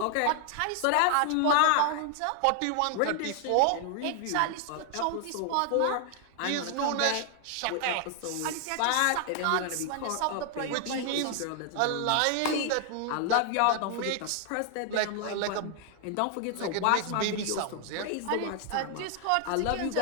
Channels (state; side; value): different; both; correlation 0.00